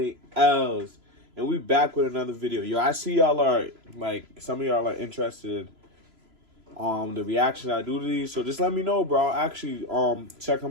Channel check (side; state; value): left; late; 3.0 ms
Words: and we back with another video. Yo, I see y'all are some of y'all are interested the reaction I do to these, so just let me know, bro. I'll actually check